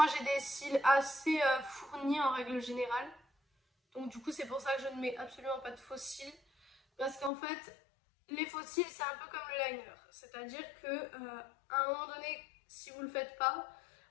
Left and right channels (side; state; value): right; drops out; at 7.3 s